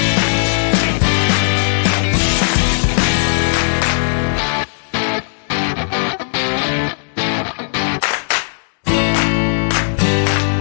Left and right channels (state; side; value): silent; right; digital silence